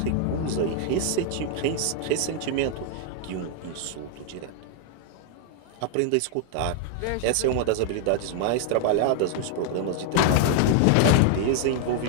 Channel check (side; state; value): both; different; correlation 0.00